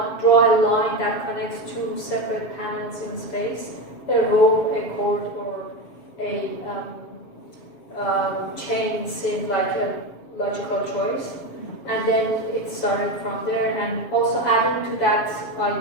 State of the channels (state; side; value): late; right; 7.2 ms